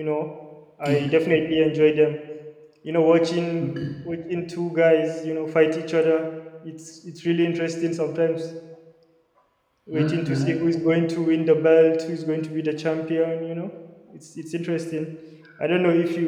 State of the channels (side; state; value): both; identical; correlation 1.00